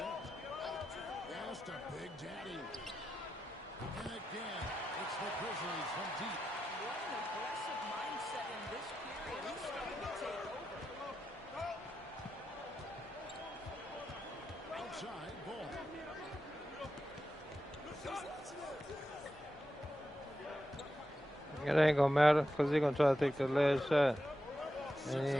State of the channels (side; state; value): both; normal; correlation 0.89